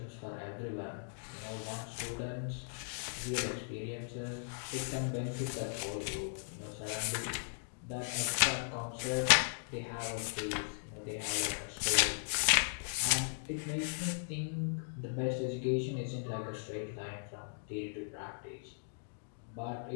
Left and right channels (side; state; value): right; silent; digital silence